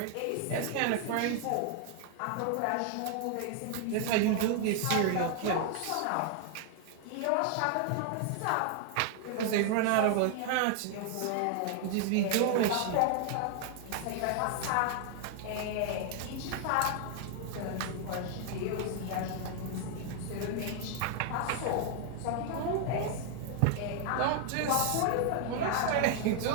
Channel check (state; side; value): different; both; correlation 0.00